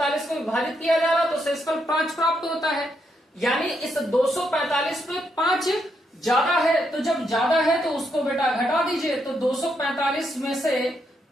को विभाजित किया जा रहा तो शेषफल 5 प्राप्त होता है। यानी इस 245 पे 5 ज्यादा है, तो जब ज्यादा है तो उसको बेटा घटा दीजिए। तो 245 में से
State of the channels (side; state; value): both; normal; correlation 0.79